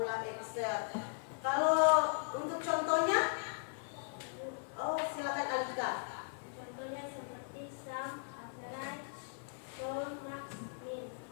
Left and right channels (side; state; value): right; silent; digital silence